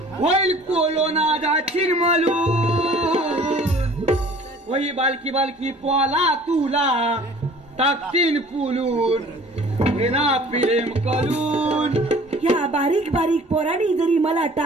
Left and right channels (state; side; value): normal; both; correlation 0.49